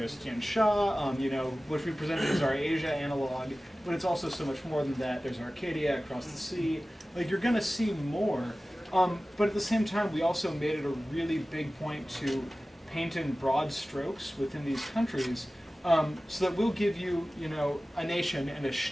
Tian Sha, which we presented as our Asia analog, but it's also so much more than that. There's Arcadia across the sea. Like, you're going to see more. But at the same time, we also made it a really big point to paint in broad strokes within these countries, so that we'll give you, a nation and a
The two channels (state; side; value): normal; both; correlation 0.96